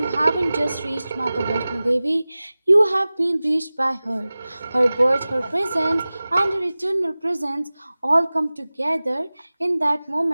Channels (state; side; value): inverted; both; correlation -0.98